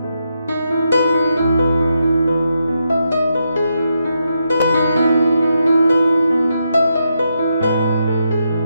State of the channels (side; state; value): both; inverted; correlation -0.82